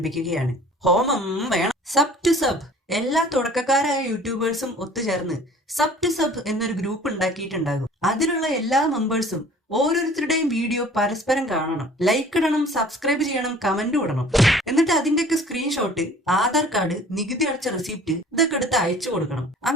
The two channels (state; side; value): normal; both; correlation 0.49